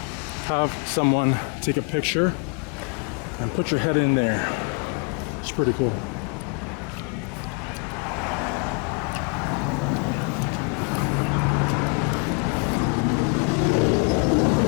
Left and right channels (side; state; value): right; quieter; 38.4 dB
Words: Have someone take a picture and put your head in there. It's pretty cool.